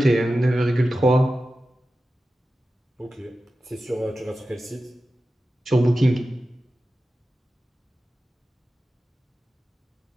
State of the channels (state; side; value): normal; both; correlation 0.93